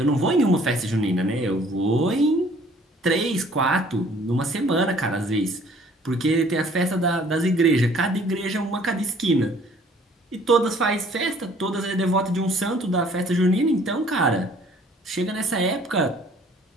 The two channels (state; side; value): normal; both; correlation 0.56